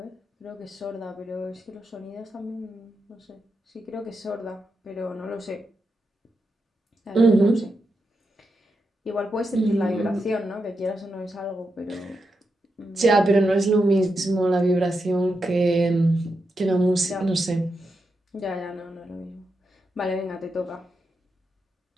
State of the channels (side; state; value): both; normal; correlation 0.86